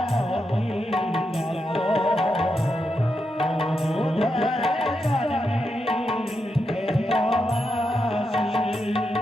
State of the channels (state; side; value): normal; both; correlation 0.85